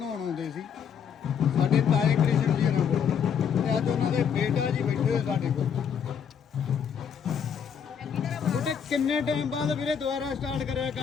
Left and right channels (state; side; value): quieter; right; 7.4 dB